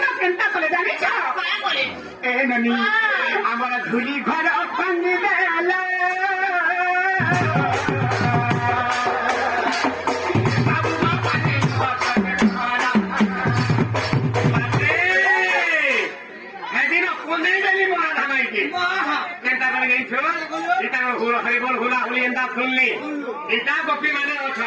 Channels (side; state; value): both; identical; correlation 1.00